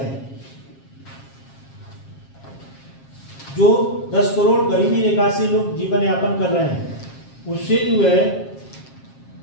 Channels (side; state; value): right; late; 7.4 ms